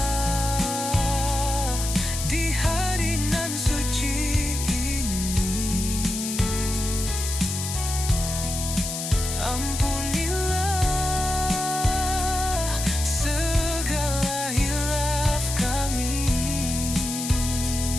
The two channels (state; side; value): noise; left; hiss, 5 dB below the sound